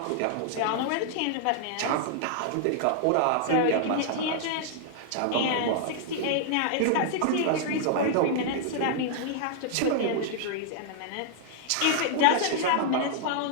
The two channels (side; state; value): both; different; correlation -0.01